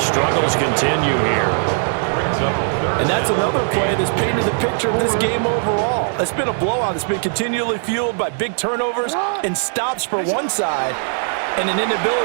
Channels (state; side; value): silent; left; 66 dB below the other